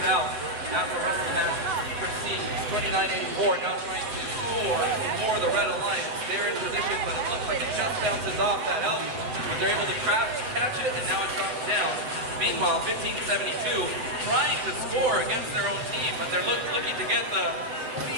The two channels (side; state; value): left; late; 7.9 ms